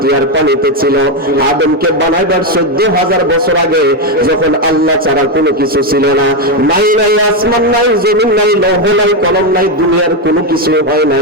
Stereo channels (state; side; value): normal; both; correlation 0.07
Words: আর পানিতে ছিল, আদমকে বানাইবার 14,000 বছর আগে যখন আল্লাহ ছাড়া কোনো কিছু ছিল না, নাই নাই আসমান নাই, জমিন নাই, লৌহ নাই, কলম নাই, দুনিয়ার কোনো কিছু হয়